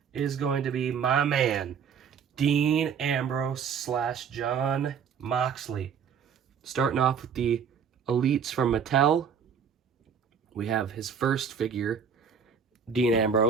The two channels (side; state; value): left; quieter; 7.0 dB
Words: is going to be my man, Dean Ambrose / John Moxley. Starting off with the Elites from Mattel. We have his first figure, Dean